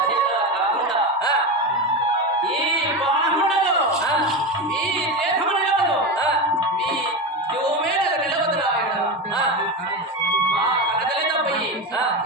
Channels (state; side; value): normal; both; correlation 0.19